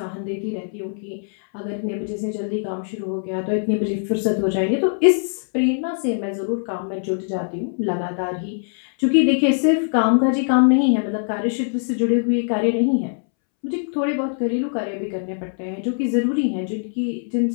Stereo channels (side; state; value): right; silent; 64 dB below the other